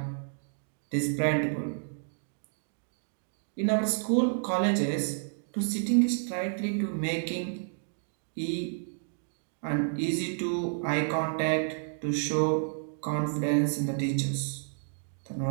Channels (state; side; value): silent; left; digital silence